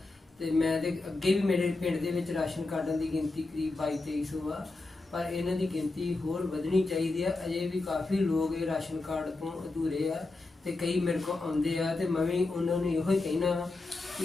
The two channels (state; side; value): quieter; right; 3.3 dB